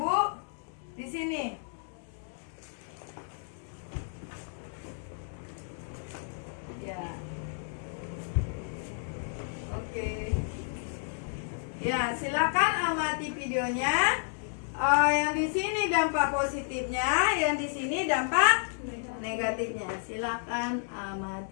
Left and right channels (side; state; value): right; silent; digital silence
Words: Bu. Di sini. Ya. Oke. Ya, silakan amati videonya. Yang di sini dampak positifnya, yang di sini dampak negatifnya. Silakan